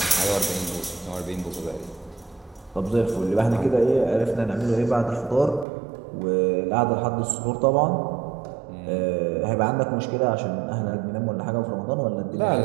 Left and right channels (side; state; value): left; drops out; at 5.7 s